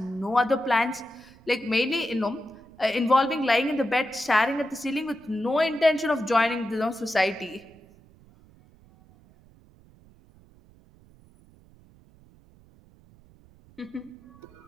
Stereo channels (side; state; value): right; noise; rumble, 27 dB below the sound